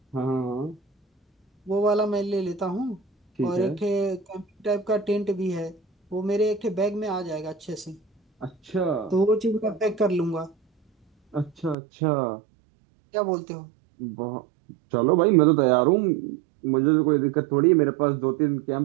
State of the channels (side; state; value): left; drops out; at 11.8 s